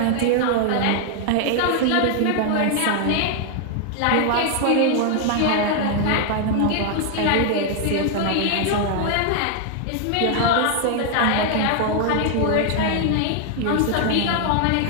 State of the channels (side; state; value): both; different; correlation 0.00